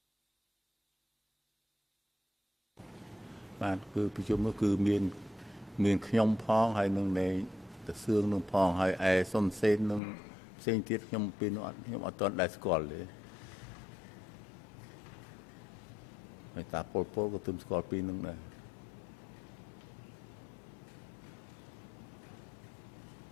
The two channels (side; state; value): right; drops out; at 10.0 s